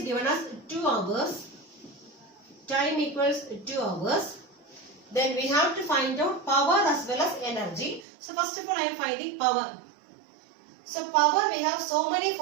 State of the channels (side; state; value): left; drops out; at 8.1 s